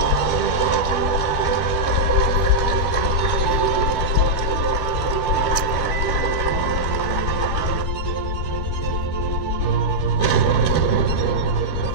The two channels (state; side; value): late; right; 12 ms